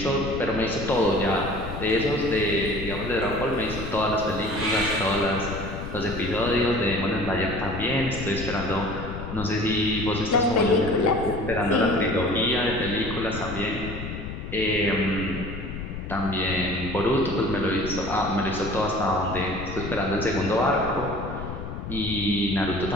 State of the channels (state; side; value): noise; left; rumble, 8 dB below the sound